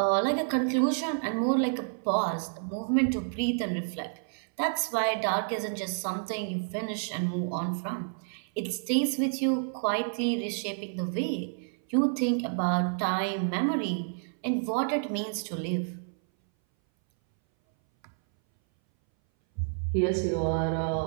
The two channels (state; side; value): silent; left; 58 dB below the other